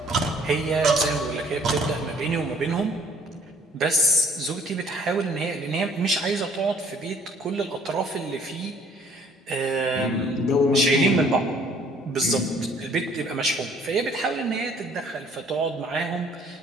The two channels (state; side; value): normal; both; correlation 0.58